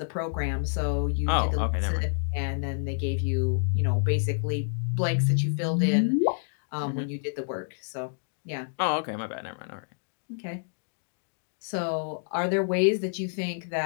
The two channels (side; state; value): right; silent; digital silence